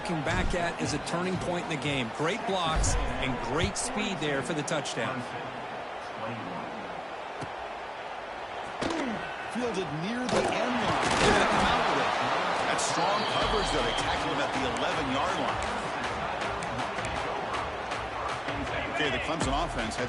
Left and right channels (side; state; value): both; identical; correlation 1.00